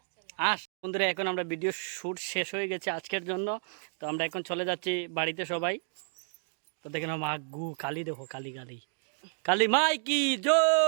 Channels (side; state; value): left; silent; 57 dB below the other